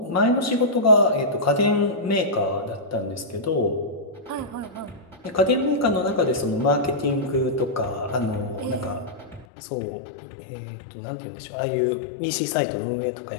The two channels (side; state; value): right; drops out; at 9.5 s